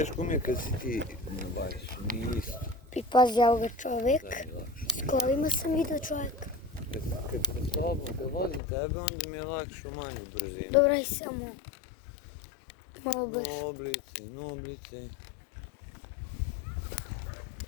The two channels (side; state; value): right; drops out; at 8.6 s